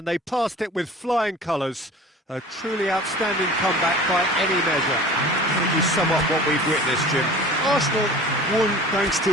they passed it with flying colours. A truly outstanding comeback by any measure. How would you sum up what we've witnessed, Jim? Arsenal won thanks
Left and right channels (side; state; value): both; normal; correlation 0.42